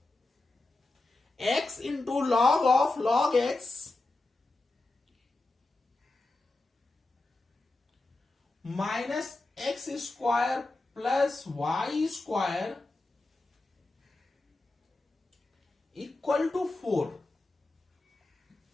x into log of log x minus x square plus y square equal to 4।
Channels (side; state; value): right; quieter; 3.1 dB